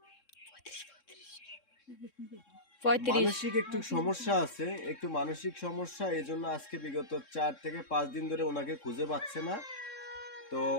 35। মানসিক একটু সমস্যা আছে, একটু মানসিক সমস্যা, এই জন্য আজকে বিগত 4 থেকে 5 দিন ধরে ওনাকে খুঁজে পাচ্ছে না। তো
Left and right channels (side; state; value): right; late; 3.7 ms